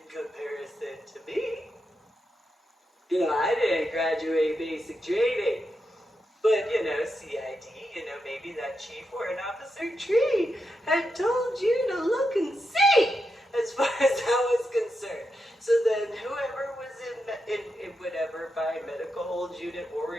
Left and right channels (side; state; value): both; normal; correlation 0.86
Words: comparison to me? You know, I didn't graduate basic training, but, you know, CID, you know, maybe that Chief Warrant Officer Tree had told you to look and see as far as that was concerned. So then whoever was in whatever, by medical hold unit,